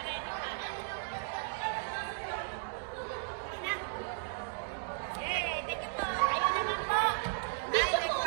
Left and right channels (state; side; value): silent; left; digital silence